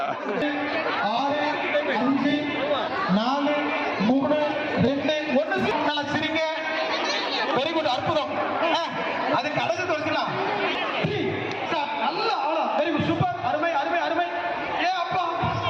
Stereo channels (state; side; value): identical; both; correlation 1.00